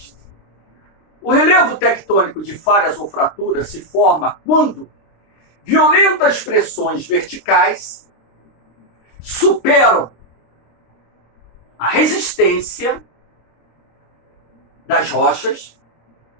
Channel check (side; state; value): right; late; 26 ms